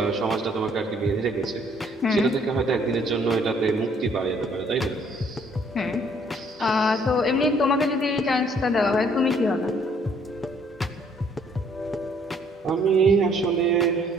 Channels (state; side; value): normal; both; correlation 0.63